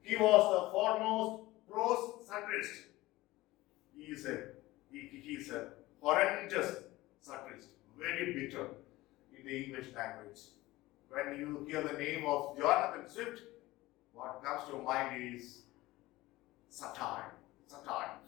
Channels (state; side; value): quieter; right; 18.6 dB